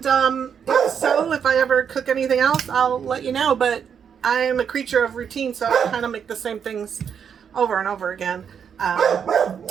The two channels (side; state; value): left; quieter; 7.5 dB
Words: if so, if I ever cook anything else, I'll let you know. But I'm a creature of routine, so I kind of make the same things over and over again.